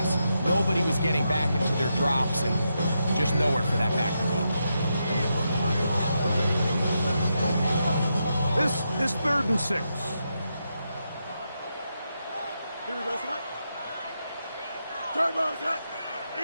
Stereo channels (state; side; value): inverted; both; correlation -0.84